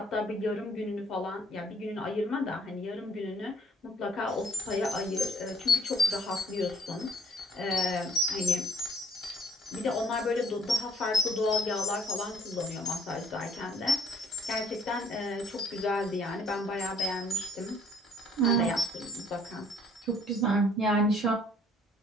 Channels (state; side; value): normal; both; correlation 0.60